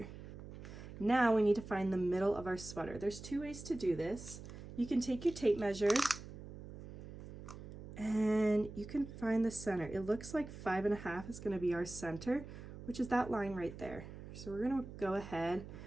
Now we need to find the middle of our sweater. There's 2 ways to do this. You can take your tape measure and you can find the center. It looks like 5.5 is going to be our center, which is that line right there. So we're going to go ahead,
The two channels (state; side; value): noise; right; hum, 13 dB below the sound